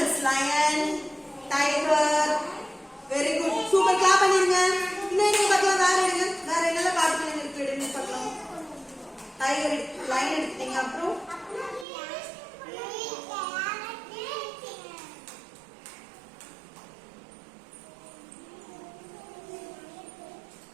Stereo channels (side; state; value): left; drops out; at 11.9 s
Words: lion tiger very good super clap பண்ணிருங்க இன்னும் என்ன பார்க்கலாம் வேற என்னெல்லாம் காட்டுல இருக்கு எடுங்க பார்க்கலாம் டைகர் லயன் எடுத்தீங்க அப்புறம்